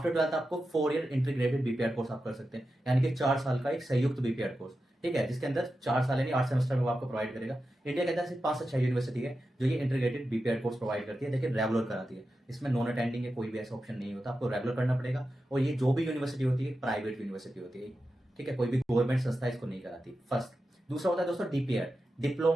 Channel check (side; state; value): both; normal; correlation 0.91